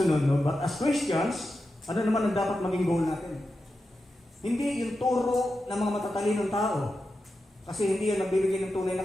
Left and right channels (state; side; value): normal; both; correlation 0.90